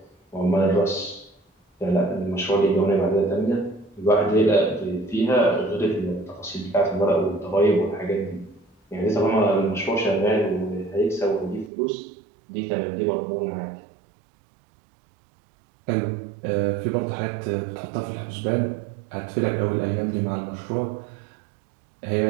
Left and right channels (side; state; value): left; drops out; at 11.7 s